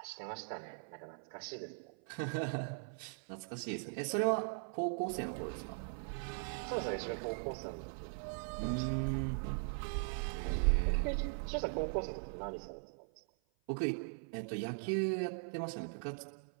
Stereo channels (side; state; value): left; silent; 51 dB below the other